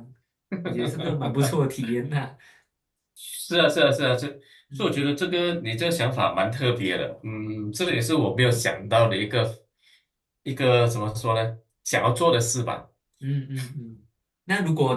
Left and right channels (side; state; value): both; identical; correlation 1.00